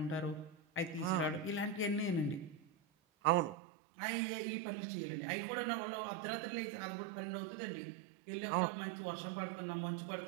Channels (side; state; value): left; drops out; at 3.6 s